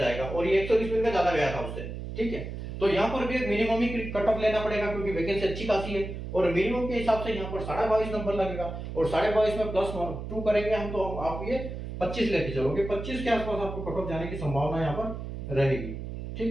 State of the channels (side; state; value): right; noise; hum, 7 dB below the sound